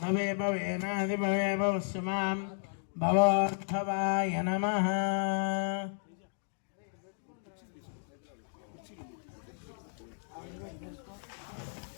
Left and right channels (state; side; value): silent; right; digital silence